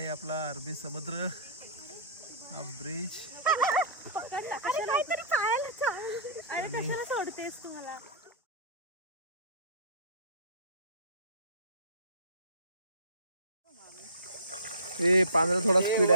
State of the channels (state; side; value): inverted; both; correlation -0.36